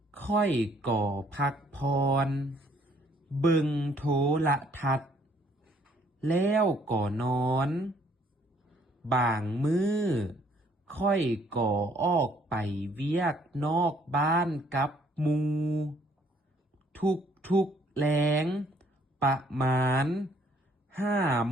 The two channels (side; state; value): both; normal; correlation 0.64